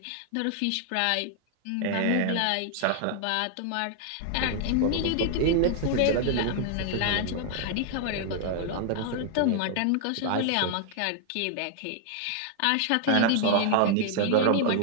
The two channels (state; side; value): different; both; correlation 0.00